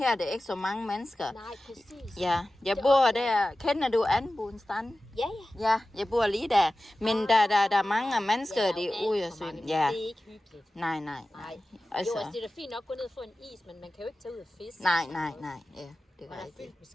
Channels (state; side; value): normal; both; correlation 0.95